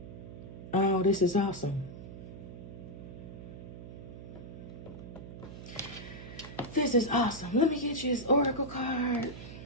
Oh, this is awesome. This is awesome. Let me get you this oracle card.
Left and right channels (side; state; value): right; noise; hum, 12 dB below the sound